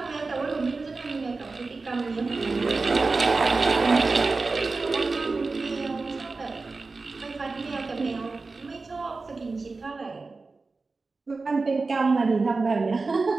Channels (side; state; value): left; quieter; 3.9 dB